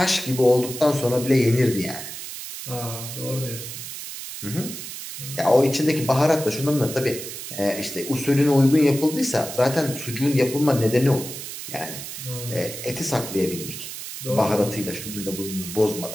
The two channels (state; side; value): noise; right; hiss, 9 dB below the sound